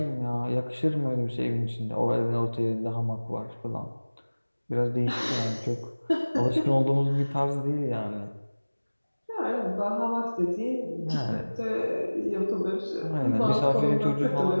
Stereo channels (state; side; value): inverted; both; correlation -1.00